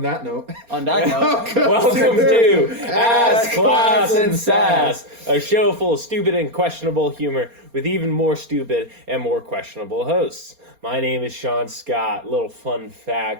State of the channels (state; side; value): late; left; 4.3 ms